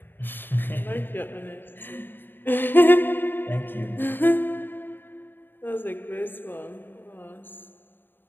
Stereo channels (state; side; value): late; right; 0.096 ms